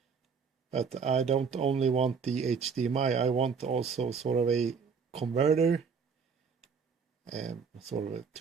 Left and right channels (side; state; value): left; quieter; 5.9 dB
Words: But I don't only want the HDMI, I want also sort of a converter, sort of